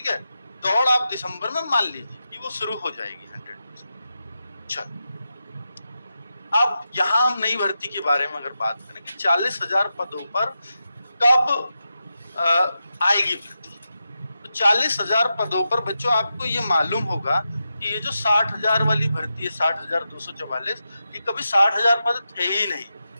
है। दौड़ आप दिसंबर में मान लीजिए कि वो शुरू हो जाएगी 100%। चलो, अब यहाँ हम नई भर्ती के बारे में अगर बात करें कि 40,000 पदों पर कब आएगी भर्ती, तो 40,000 पदों पर बच्चों आपको ये मालूम होगा कि ये जो 60,000 वाली भर्ती है 60,244, ये कभी 60,000 पद थे ही नहीं।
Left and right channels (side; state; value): both; inverted; correlation -0.89